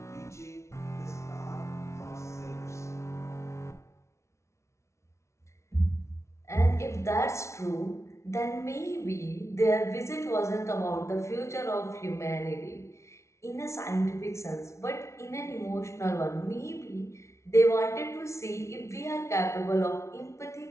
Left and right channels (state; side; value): late; right; 0.13 ms